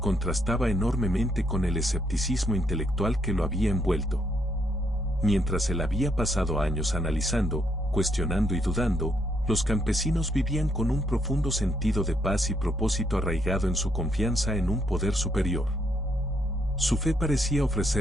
enormemente con el escepticismo intelectual que lo había envuelto. Mientras él había pasado años analizando, cuestionando y dudando, los campesinos vivían con un profundo sentido de paz y propósito arraigado en su confianza en un poder superior. Su fe parecía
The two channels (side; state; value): both; normal; correlation 0.74